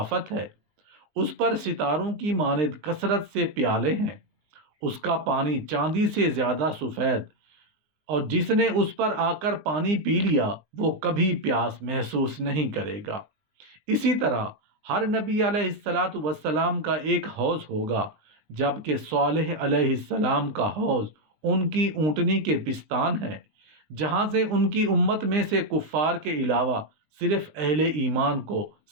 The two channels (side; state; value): left; late; 20 ms